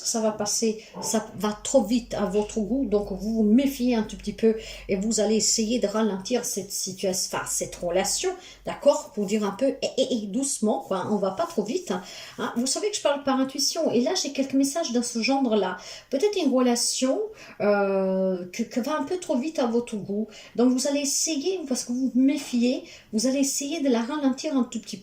ça va passer, ça va trop vite à votre goût, donc vous vous méfiez un tout petit peu et vous allez essayer de ralentir cette situation, enfin, cette relation, d'accord, pour dire un peu doucement, quoi, on va pas trop vite. Hein. Vous savez que je parle par intuition et là, j'ai quelques messages dans ce genre-là. Peut-être une relation que va un peu trop vite à votre goût. Donc, vous allez essayer, parce que vous vous méfiez, vous allez allez essayer de la ralentir un tout petit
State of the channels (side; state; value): both; identical; correlation 1.00